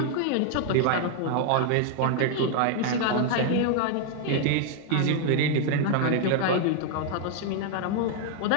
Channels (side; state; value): both; different; correlation 0.00